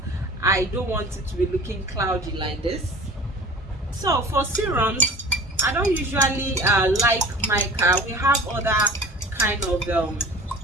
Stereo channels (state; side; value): normal; both; correlation 0.41